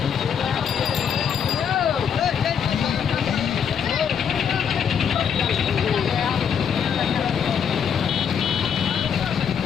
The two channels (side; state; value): right; quieter; 7.6 dB